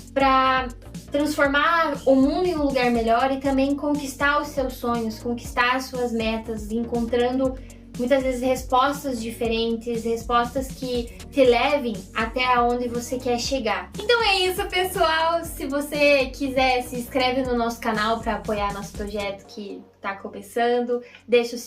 para transformar o mundo em um lugar melhor e também conquistar os seus sonhos, conquistar as suas metas, encontrando muitas vezes respostas diferentes, respostas que te levem até onde você quer chegar. Então é isso, pessoal. Se você quiser, se inscreve no nosso canal para apoiar nosso projeto que tá começando. Deixa o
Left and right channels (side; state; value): both; identical; correlation 1.00